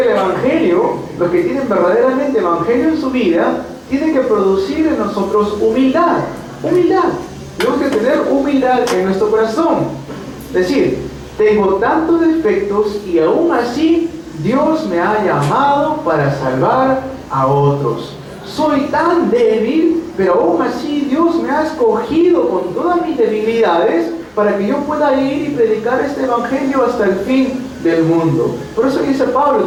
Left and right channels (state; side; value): identical; both; correlation 1.00